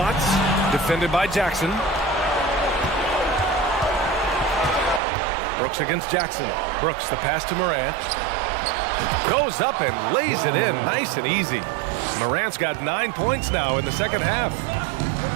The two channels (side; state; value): left; drops out; at 5.0 s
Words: defended by Jackson. Brooks against Jackson. Brooks, the pass to Morant. Goes up and lays it in nice and easy. Morant's got 9 points now in the second half.